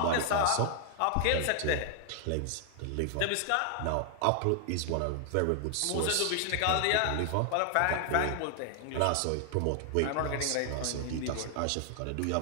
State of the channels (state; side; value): different; both; correlation 0.00